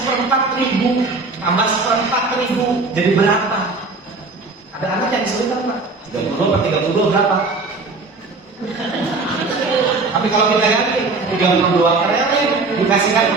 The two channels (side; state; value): left; quieter; 3.8 dB